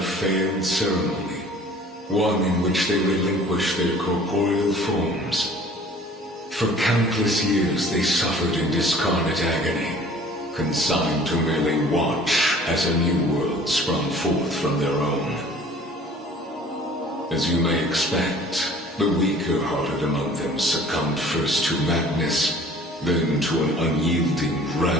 failed ceremony, one in which they relinquished their corporeal forms. For countless years they suffered in discarnate agony, consigned to merely watch as a new world sprung forth from their own. As you may expect, the weaker-hearted among them succumbed first to madness, then to an unyielding,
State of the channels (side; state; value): both; normal; correlation 0.49